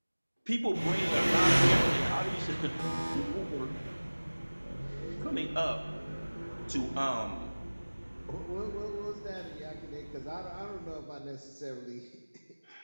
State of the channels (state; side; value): inverted; both; correlation -1.00